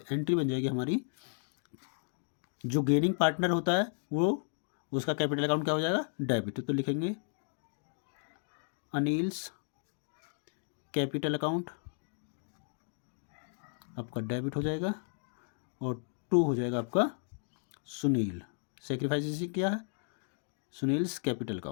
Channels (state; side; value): silent; right; 55 dB below the other